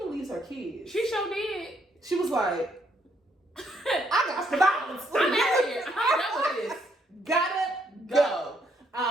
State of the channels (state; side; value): normal; both; correlation 0.72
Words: leaves her kids. She sure did. She was like, I got the balance. I'm out here. I'm done with this. Gotta go.